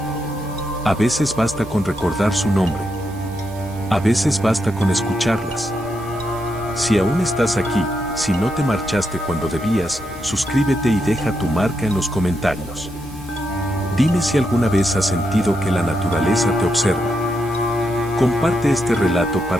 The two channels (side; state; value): both; normal; correlation 0.82